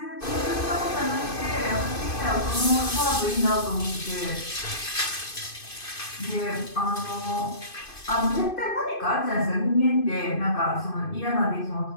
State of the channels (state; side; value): late; right; 2.5 ms